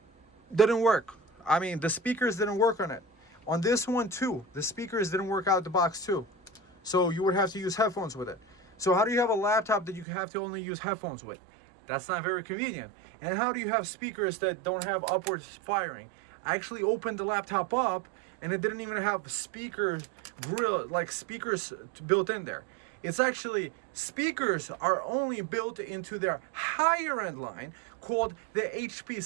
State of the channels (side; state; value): left; drops out; at 10.1 s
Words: didn't work. I mean, the speakers didn't work on it. On this one too, the speakers didn't work out the box too. So you would have to use headphones with it. So how do you have a laptop that you have to only use headphones with? That's not very convenient. And how do you have speakers that don't have upwards firing? I actually opened the laptop up and it didn't even have speaker grill, like speakers built in there. It's actually, speakers are only built into their higher end line called the HP